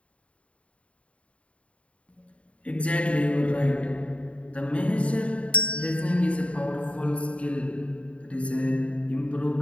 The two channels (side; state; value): right; late; 0.063 ms